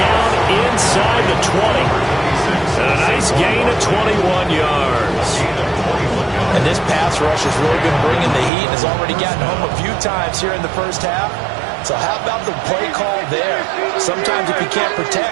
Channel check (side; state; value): left; drops out; at 8.5 s